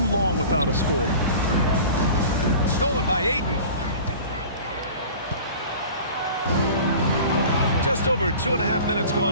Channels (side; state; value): both; inverted; correlation -0.41